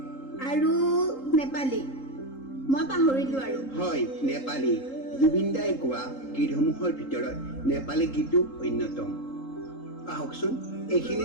আৰু নেপালী। মই পাহৰিলো আৰু। হয়, নেপালী। জুবিন দাই গোৱা গীতসমূহৰ ভিতৰত নেপালী গীতো অন্যতম। আহকচোন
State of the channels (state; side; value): late; right; 3.8 ms